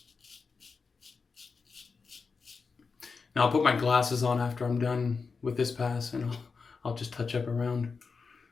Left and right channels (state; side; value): quieter; right; 4.9 dB